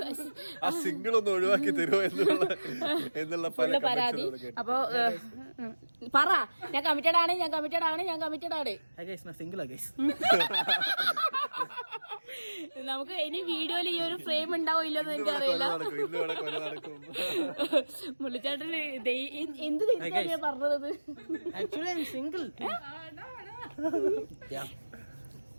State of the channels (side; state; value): both; inverted; correlation -1.00